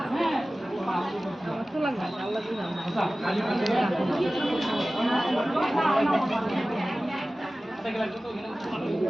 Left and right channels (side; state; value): both; normal; correlation 0.96